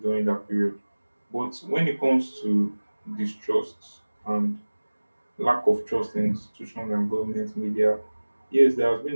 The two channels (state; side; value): inverted; both; correlation -1.00